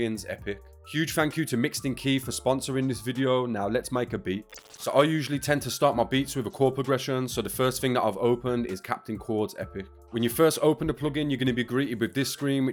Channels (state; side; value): identical; both; correlation 1.00